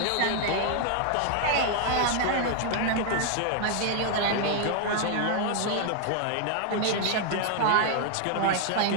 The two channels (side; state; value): both; different; correlation 0.00